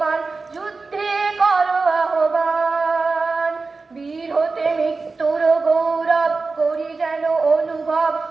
যুদ্ধে করো আহ্বান, বীর হতে মৃত্যুর গৌরব করি যেন অনুভব।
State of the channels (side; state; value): left; quieter; 4.0 dB